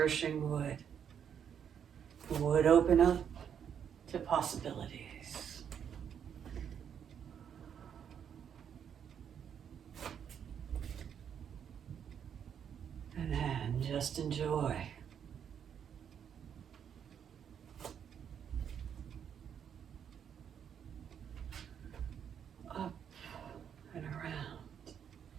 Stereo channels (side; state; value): left; quieter; 8.2 dB